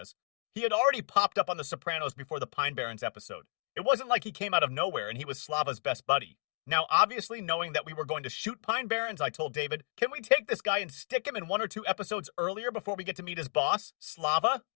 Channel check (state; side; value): silent; right; 56 dB below the other